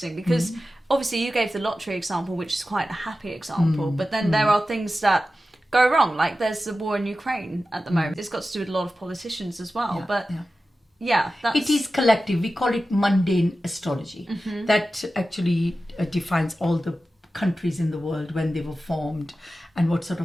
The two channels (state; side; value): normal; both; correlation 0.94